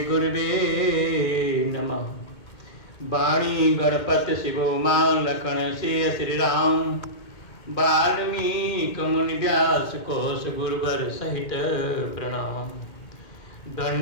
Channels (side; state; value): right; late; 2.2 ms